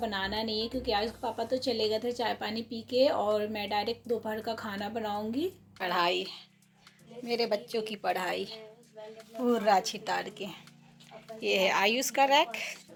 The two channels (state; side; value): identical; both; correlation 1.00